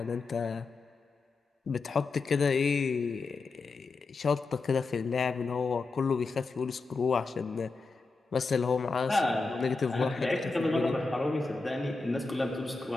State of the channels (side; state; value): right; quieter; 4.0 dB